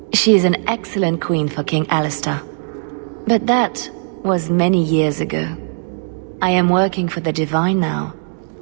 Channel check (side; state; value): left; silent; 66 dB below the other